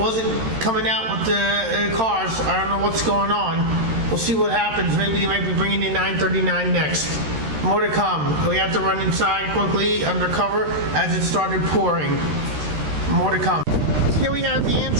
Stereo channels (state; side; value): late; left; 13 ms